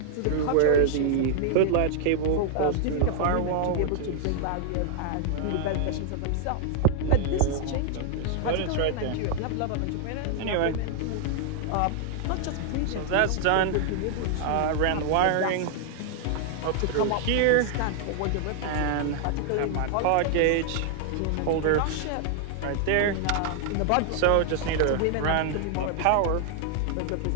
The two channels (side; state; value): both; different; correlation 0.00